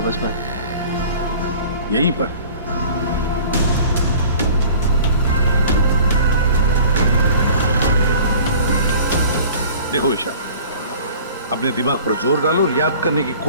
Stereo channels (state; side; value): inverted; both; correlation -0.45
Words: बस मैं। यहीं पर? देखो ईशा, अपने दिमाग पर जोर डालो और याद करने की